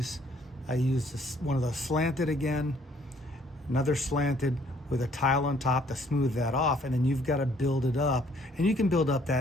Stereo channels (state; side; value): normal; both; correlation 0.63